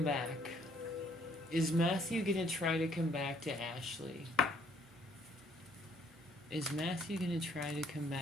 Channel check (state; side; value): normal; both; correlation 0.64